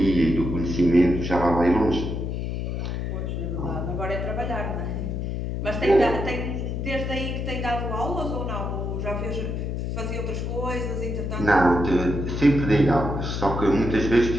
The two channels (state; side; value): noise; left; hum, 3 dB below the sound